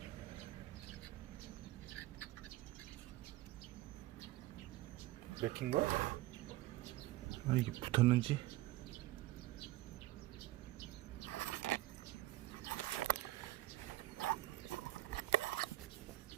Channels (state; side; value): quieter; left; 16.7 dB